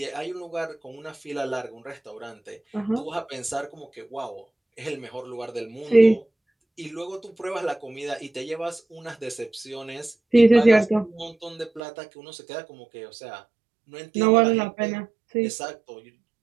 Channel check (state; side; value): drops out; left; at 11.8 s